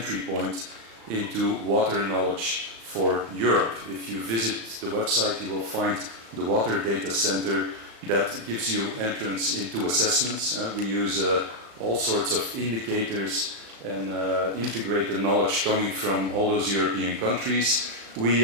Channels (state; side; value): late; left; 35 ms